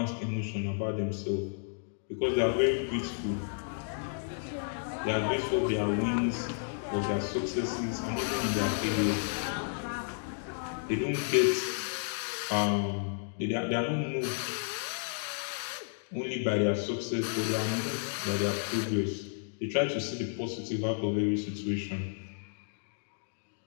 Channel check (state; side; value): silent; right; digital silence